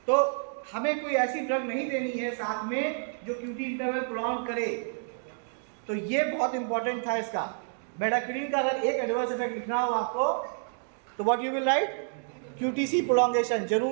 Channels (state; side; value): silent; left; digital silence